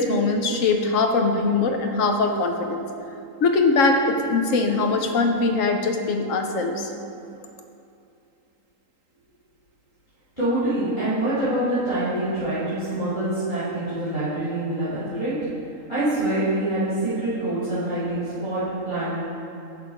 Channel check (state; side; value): late; right; 3.8 ms